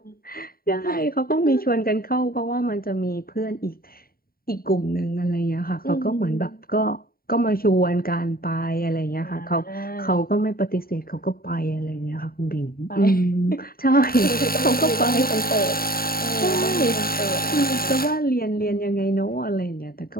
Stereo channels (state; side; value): late; right; 0.43 ms